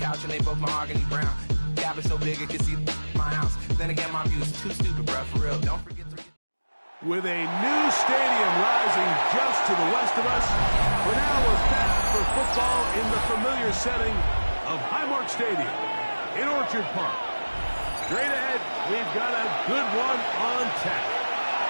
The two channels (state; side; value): inverted; both; correlation -1.00